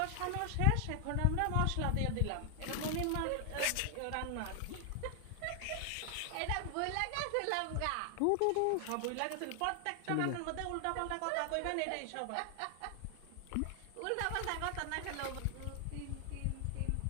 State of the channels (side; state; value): both; different; correlation 0.00